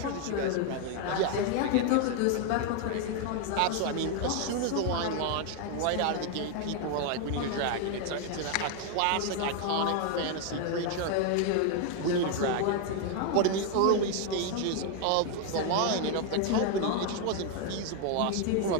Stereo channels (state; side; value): different; both; correlation 0.01